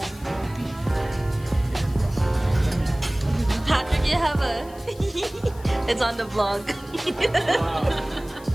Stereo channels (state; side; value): noise; left; hiss, 23 dB below the sound